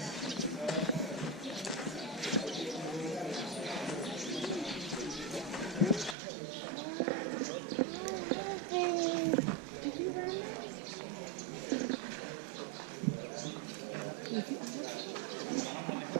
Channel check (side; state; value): left; drops out; at 6.2 s